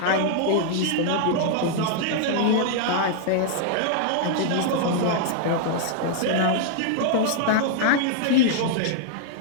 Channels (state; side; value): different; both; correlation -0.01